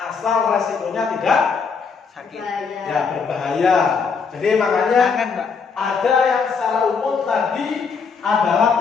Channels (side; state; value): right; quieter; 5.5 dB